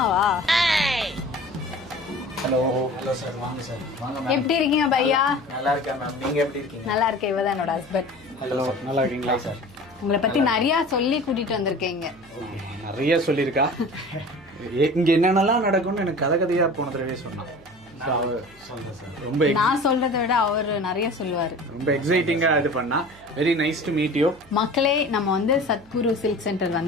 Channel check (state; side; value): noise; right; hum, 26 dB below the sound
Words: ஹலோ ஹலோ சார், வாங்க சார். வாங்க. எப்படி இருக்கீங்க பையா? நல்லா இருக்கேன் மேம், நீங்க எப்படி இருக்கீங்க? நல்லா இருக்கேன். இவதான் என்னோட ஹஸ்பண்ட். ஹலோ, நல்லா இருக்கீங்களா சார்? உங்களை பத்தி நிறைய சொல்லி கூட்டிட்டு வந்திருக்கீங்க. நிறைய சொல்லியிருக்கா. இங்க என்னென்னலாம் நடக்கும்னு எனக்கு கதையா போன தடவை சொன்னான். ரொம்ப நான் சொல்றதை விட அவர் நிறைய சொல்லுவாரு. ரொம்ப எக்ஸைட்டிங்கா இது பண்ணா. Very nice to meet you. மக்களே, நம்ம வந்து சத்குரு சில்க் சென்டர்